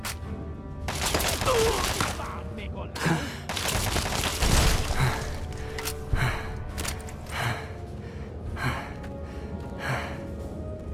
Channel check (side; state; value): both; identical; correlation 1.00